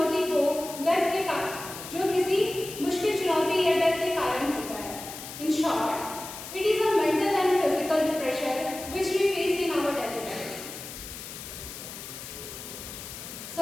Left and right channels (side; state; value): left; noise; hiss, 11 dB below the sound